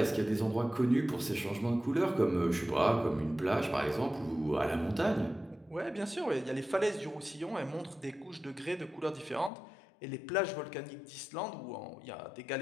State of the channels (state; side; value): drops out; right; at 9.5 s